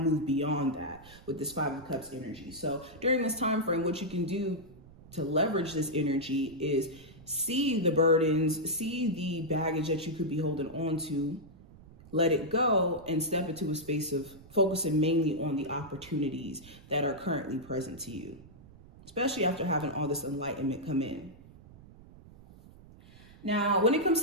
beyond that with this 5 of Cups energy. So during this time frame, what you can do to leverage this energy is see the burdens, see the baggage that you could be holding on to, let it go, and step into a space of focusing mainly on the opportunities that are currently present to you, especially after having all this enlightenment come in. Now, when it comes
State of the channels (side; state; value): right; noise; rumble, 21 dB below the sound